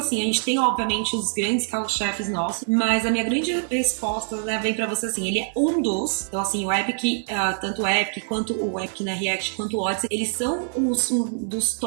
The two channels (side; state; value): left; silent; digital silence